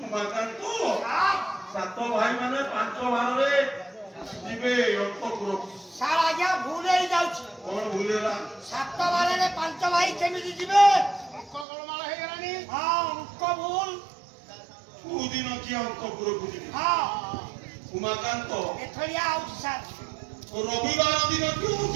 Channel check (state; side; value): drops out; left; at 11.7 s